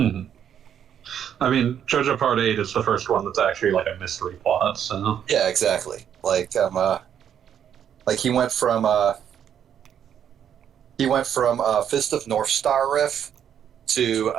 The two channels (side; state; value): left; quieter; 9.1 dB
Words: I mean, JoJo Part 8 is the first one that's actually like a mystery plot, so. Yeah, exactly. Like he went from Fist of North Star riff to